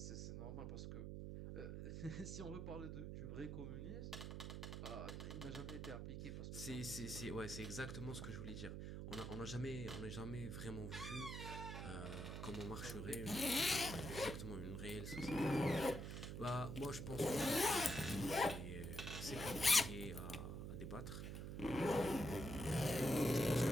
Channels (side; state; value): right; noise; hum, 5 dB below the sound